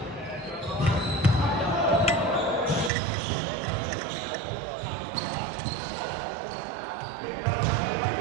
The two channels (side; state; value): left; drops out; at 2.9 s